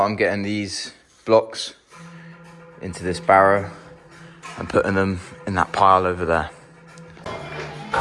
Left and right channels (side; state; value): both; identical; correlation 1.00